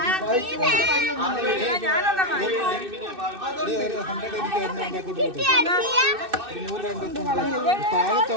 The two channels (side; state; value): left; late; 2.6 ms